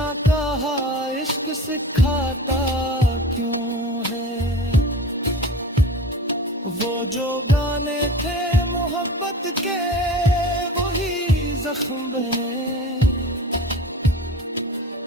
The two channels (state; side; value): normal; both; correlation 0.35